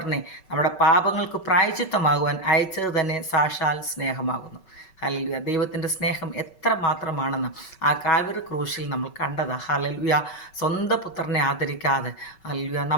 നമ്മുടെ പാപങ്ങൾക്ക് പ്രായശ്ചിത്തമാകുവാൻ അയച്ചത് തന്നെ സാക്ഷാൽ സ്നേഹമാകുന്നു. ഹല്ലേലൂയ. ദൈവത്തിൻ്റെ സ്നേഹം എത്ര മാത്രമാണെന്ന് ആ കാൽവരി ക്രൂശിൽ നമ്മൾ കണ്ടതാ. ഹല്ലേലൂയ. സ്വന്തം പുത്രനെ ആദരിക്കാതെ ഹല്ലേലൂയ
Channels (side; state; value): right; late; 5.3 ms